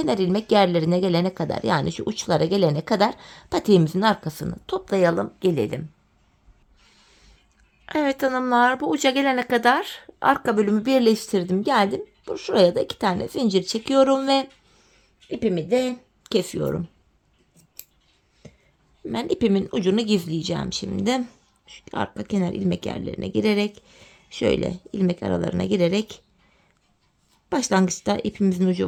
ilmek yerlerine gelene kadar, yani şu uçlara gelene kadar patiğimizin arkasını toplayalım, gelelim. Evet hanımlar, bu uca gelene kadar arka bölümü birleştirdim, geldim. Şuraya da 2 tane zincir çekiyorum ve ipimi de kesiyorum. Ben ipimin ucunu gizleyeceğim şimdi. Şu arka kenar ilmek yerlerine girerek şöyle ilmek aralarına girerek, başlangıçta ipimizin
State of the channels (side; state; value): both; identical; correlation 1.00